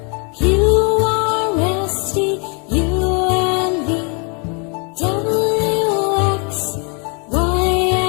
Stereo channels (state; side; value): quieter; right; 35.9 dB